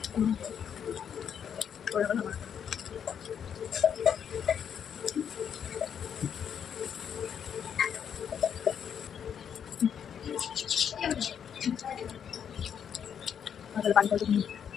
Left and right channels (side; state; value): right; quieter; 8.1 dB